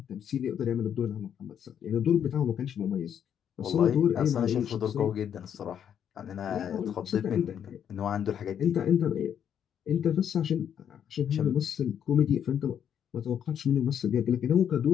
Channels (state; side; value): quieter; right; 8.9 dB